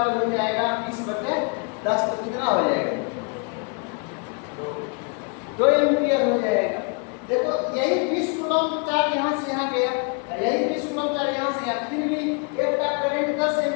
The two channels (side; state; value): right; quieter; 36.2 dB